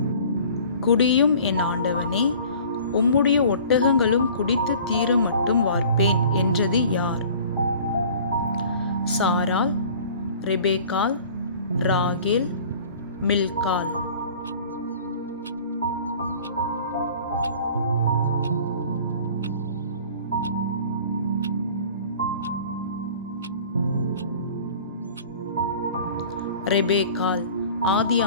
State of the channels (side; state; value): both; inverted; correlation -0.46